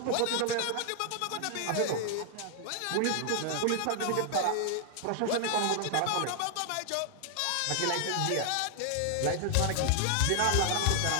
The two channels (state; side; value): different; both; correlation 0.00